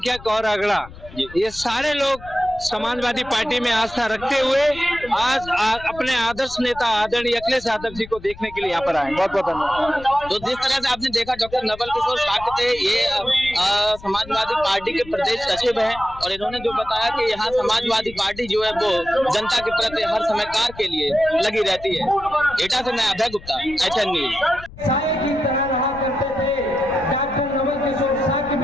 और अगड़ा, ये सारे लोग समाजवादी पार्टी में आस्था रखते हुए आज अपने आदर्श नेता आदरणीय अखिलेश यादव जी को देखने के लिए यहाँ पर आए। बहुत बहुत धन्यवाद। तो जिस तरह से आपने देखा, डॉक्टर नवल किशोर शाक्य थे, ये समाजवादी पार्टी के प्रदेश सचिव हैं, और इन्होंने जो बताया कि यहाँ समाजवादी पार्टी जो है वो जनता के प्रति हर समय कार्य के लिए लगी रहती है। एटा से मैं अभय गुप्ता, HN न्यूज। साए की तरह रहा करते थे डॉक्टर नवल किशोर शाक्य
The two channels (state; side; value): noise; left; rumble, 17 dB below the sound